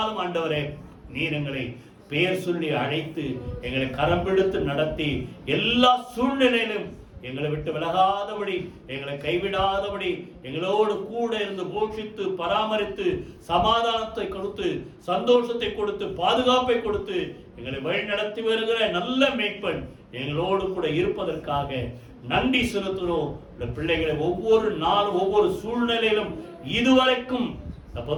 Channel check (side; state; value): both; identical; correlation 1.00